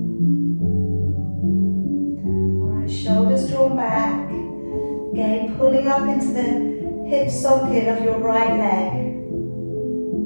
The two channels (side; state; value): both; inverted; correlation -1.00